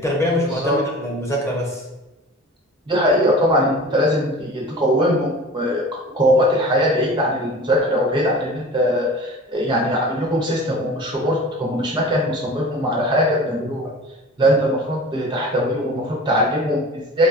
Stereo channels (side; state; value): both; normal; correlation 0.38